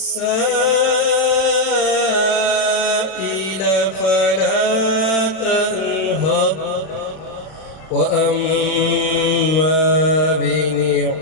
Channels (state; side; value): late; right; 31 ms